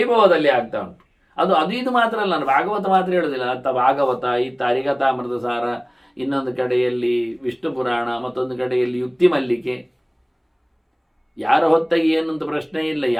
ಆಗ್ತಾ ಉಂಟು. ಅದು ಇದು ಮಾತ್ರ ಅಲ್ಲ, ನಾನು ಭಾಗವತ ಮಾತ್ರ ಹೇಳೋದಿಲ್ಲ. ಭಾಗವತ, ಹರಿಕಥಾಮೃತ ಸಾರ, ಇನ್ನೊಂದು ಕಡೆಯಲ್ಲಿ ವಿಷ್ಣು ಪುರಾಣ, ಮತ್ತೊಂದು ಕಡೆಯಲ್ಲಿ ಯುಕ್ತಿ ಮಲ್ಲಿಕೆ, ಯಾರ ಹೊತ್ತಾಗಿ ಏನು ಅಂತ ಪ್ರಶ್ನೆ ಇಲ್ಲ,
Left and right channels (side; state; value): both; identical; correlation 1.00